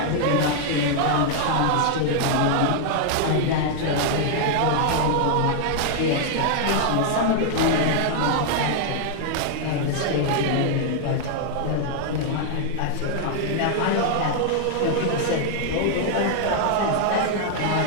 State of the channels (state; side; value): different; both; correlation 0.00